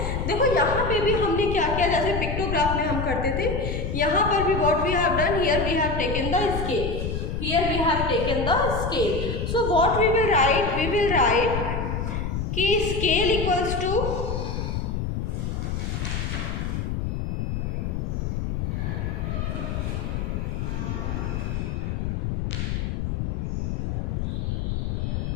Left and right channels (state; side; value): noise; left; rumble, 2 dB below the sound